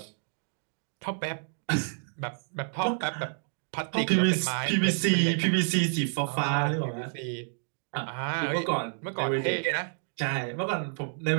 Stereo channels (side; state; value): left; silent; digital silence